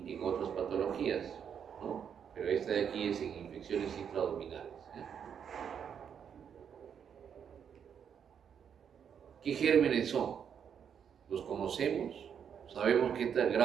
en otras patologías, ¿no? Pero esta de aquí es en infecciones intraabdominales. ¿Qué gérmenes son? ¿Los conocemos? ¿Sabemos qué tal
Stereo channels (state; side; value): quieter; left; 7.8 dB